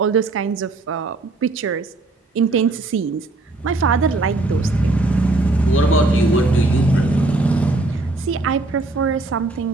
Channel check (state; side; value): quieter; left; 3.0 dB